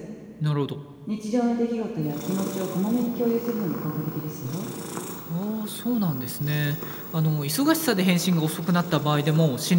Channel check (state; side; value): identical; both; correlation 1.00